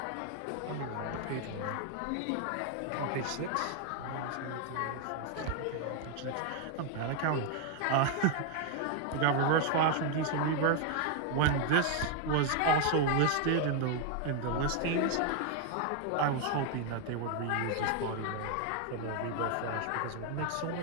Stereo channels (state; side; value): different; both; correlation 0.01